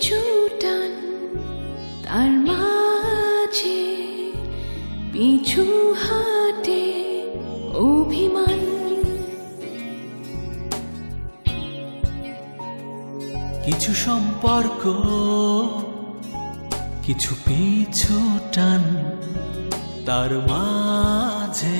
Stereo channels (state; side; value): inverted; both; correlation -1.00